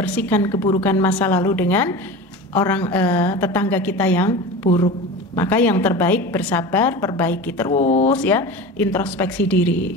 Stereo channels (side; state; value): both; normal; correlation 0.31